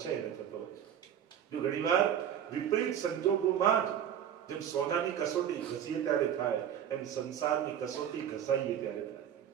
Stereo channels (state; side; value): quieter; left; 9.5 dB